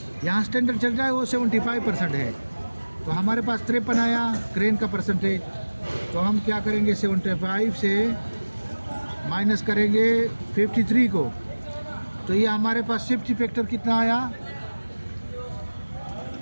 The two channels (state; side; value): inverted; both; correlation -1.00